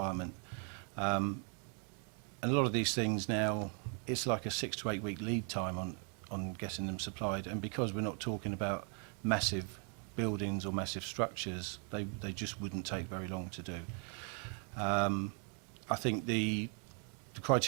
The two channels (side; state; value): left; quieter; 39.7 dB